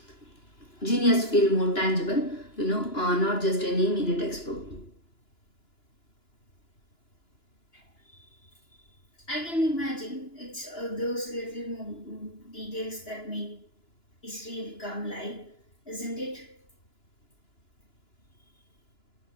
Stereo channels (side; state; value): right; late; 2.9 ms